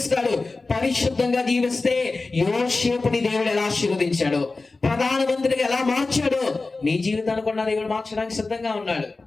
పరిశుద్ధంగా జీవిస్తే యోసేపుని దేవుడు ఎలా ఆశీర్వదించాడు, ప్రధానమంత్రిగా ఎలా మార్చాడు, నీ జీవితాన్ని కూడా దేవుడు మార్చడానికి సిద్ధంగా ఉన్నాడు.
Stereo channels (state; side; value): quieter; right; 3.6 dB